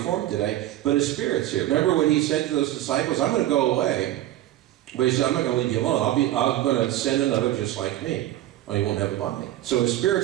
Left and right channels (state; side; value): quieter; left; 14.1 dB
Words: today, but his spirit's here. Remember when he said to those disciples, I'm going to go away, but he said, I'm not going to leave you alone. I'm going to send another just like me. Oh, he won't have a body. So his